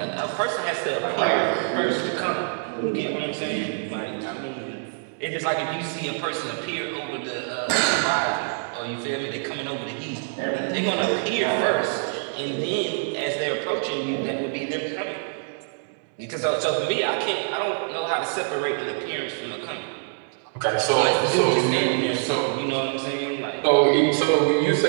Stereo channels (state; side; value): silent; left; digital silence